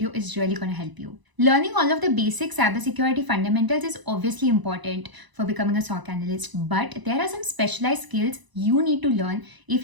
is really going to help you. Learning all of the basic cybersecurity fundamentals is obviously important for becoming a SOC analyst, but there are some specialized skills you need to learn if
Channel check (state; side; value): late; left; 1.0 ms